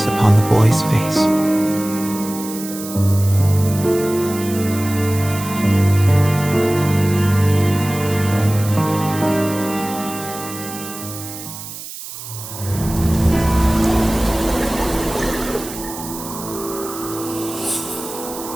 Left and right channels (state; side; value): noise; right; hiss, 11 dB below the sound